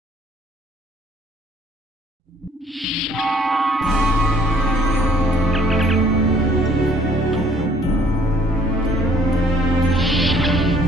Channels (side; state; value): both; normal; correlation 0.61